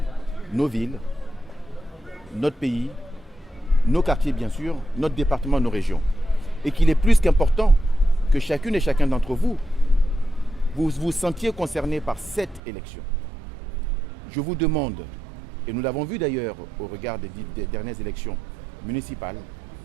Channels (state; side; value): drops out; left; at 12.6 s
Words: nos villes, notre pays, nos quartiers bien sûr, notre département, nos régions. Et qu'il est plus qu'important que chacune et chacun d'entre vous, vous vous sentiez concerné par cette élection. Je vous demande, et nous l'avons vu d'ailleurs au regard des dernières élections municipales,